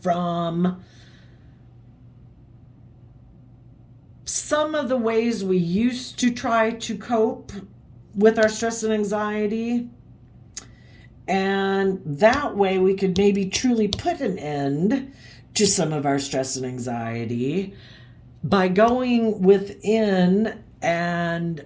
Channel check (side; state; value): both; identical; correlation 1.00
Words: from some of the ways we used to try to cope with our stress and anxiety. And that way we could maybe truly put an end to some of our stress and anxiety by going within and